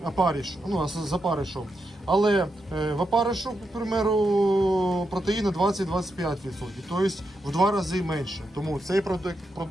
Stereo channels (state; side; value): normal; both; correlation 0.85